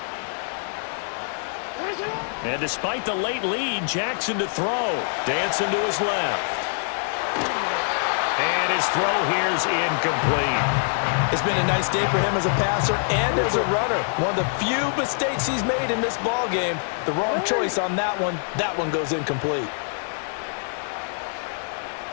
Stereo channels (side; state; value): right; silent; digital silence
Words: And despite the late lead, Jackson to throw. Dancing to his left. And his throw here's incomplete. It's been a nice day for him as a passer and as a runner. One of the few mistakes he's made in this ball game. The wrong choice on that one. That one goes incomplete.